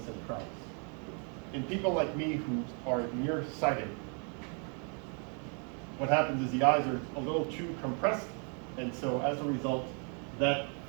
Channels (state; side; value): quieter; left; 38.9 dB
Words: centralis. In people like me who are nearsighted, what happens is the eyes are a little too compressed, and so as a result, that